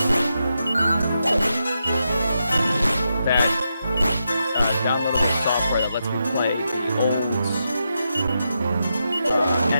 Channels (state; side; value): inverted; both; correlation -0.85